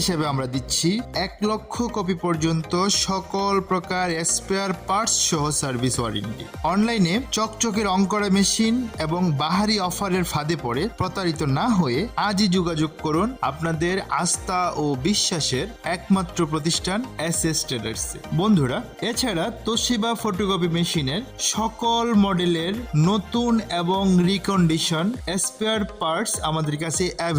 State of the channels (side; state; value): both; identical; correlation 1.00